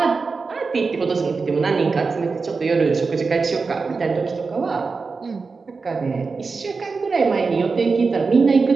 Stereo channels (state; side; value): quieter; left; 4.5 dB